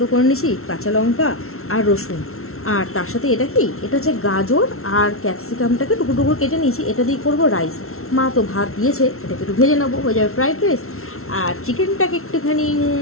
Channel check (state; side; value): late; right; 0.62 ms